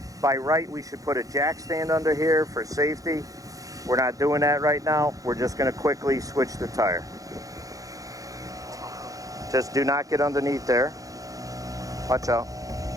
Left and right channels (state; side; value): late; left; 0.17 ms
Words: By right, we should put a jack stand under here for safety. We're not doing that right now. We're just gonna quickly switch the tire. Just do not get underneath there. Watch out.